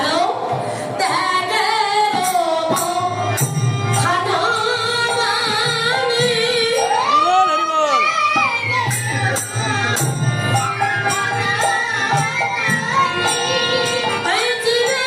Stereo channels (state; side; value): identical; both; correlation 1.00